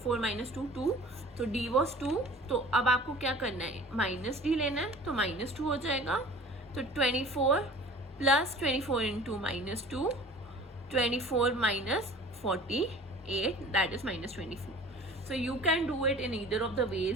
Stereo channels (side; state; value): both; normal; correlation 0.44